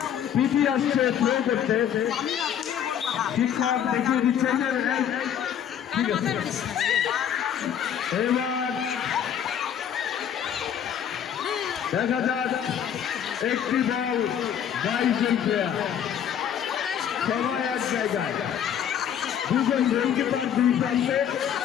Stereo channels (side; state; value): right; quieter; 9.1 dB